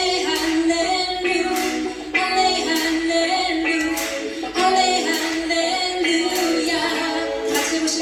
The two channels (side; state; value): both; identical; correlation 1.00